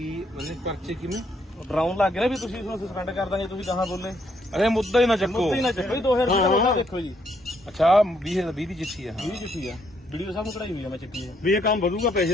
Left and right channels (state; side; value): normal; both; correlation 0.72